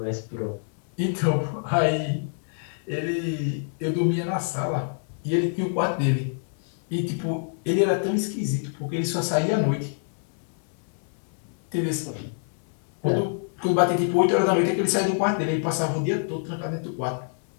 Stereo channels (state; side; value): silent; right; 61 dB below the other